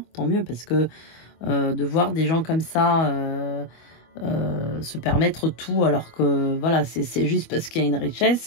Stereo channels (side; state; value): right; late; 25 ms